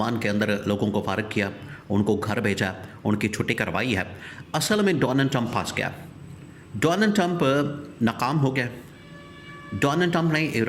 के अंदर लोगों को फारिग किया, उनको घर भेजा, उनकी छुट्टी करवाई है, असल में डोनाल्ड ट्रंप फंस गया। डोनाल्ड ट्रंप नाकाम हो गया। डोनाल्ड ट्रंप ने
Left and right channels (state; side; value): identical; both; correlation 1.00